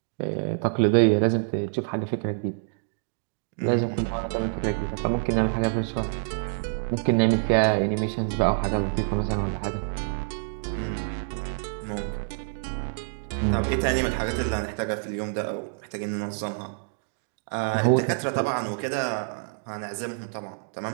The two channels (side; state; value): left; silent; digital silence